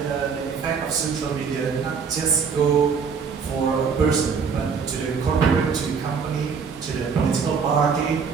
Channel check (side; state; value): left; quieter; 5.9 dB